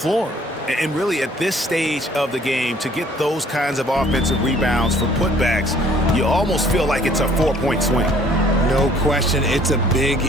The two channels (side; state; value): both; normal; correlation 0.58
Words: And really, at this stage of the game, to get those kinds of offensive rebounds for putbacks, you almost feel like it's a 4-point swing. No question, it's a big